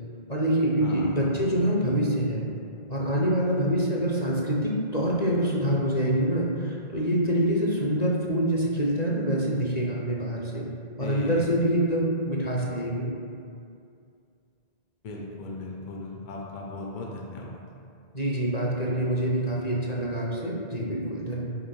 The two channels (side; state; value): right; late; 1.9 ms